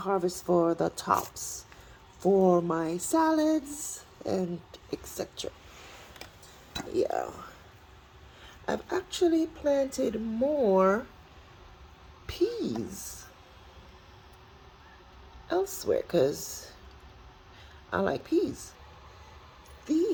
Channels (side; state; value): both; identical; correlation 1.00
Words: for the tops, for my salads and etc. Yeah, I've actually planted more peas elsewhere because I like peas.